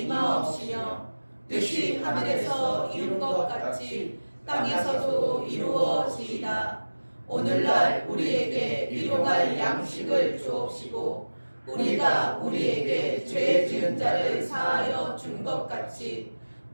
임하옵시며 뜻이 하늘에서 이룬 것 같이 땅에서도 이루어지이다. 오늘날 우리에게 일용할 양식을 주옵시고 우리가 우리에게 죄 지은 자를 사하여 준 것 같이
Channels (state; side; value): inverted; both; correlation -1.00